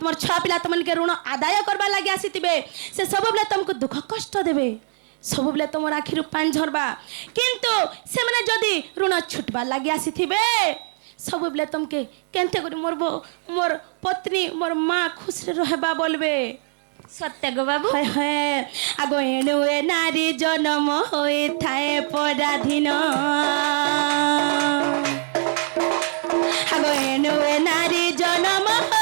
ছুয়া পিলা তোমাকে ঋণ আদায় করবার লাগি আসিতিবে সে সবুলে তোমাকে দুঃখ কষ্ট দেবে সবুলে তোমার আখিরু পানি ঝরবা কিন্তু সেমানে যদি ঋণ ছুটবার লাগি আসিতিবে সবুলে তোমাকে কেনতে করি মোর পত্নী মোর মা খুশি রহবা বলবে सत्य गो बाबू হয় হয় আগো এনুয়ে নারী জন্ম হয়ে থায়ে পরাধীন আগো এনুয়ে নারী জন্ম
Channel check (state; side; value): silent; left; 62 dB below the other